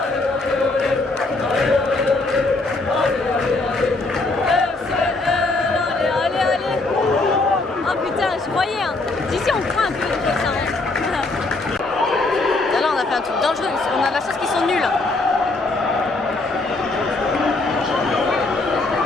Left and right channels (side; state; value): right; quieter; 3.2 dB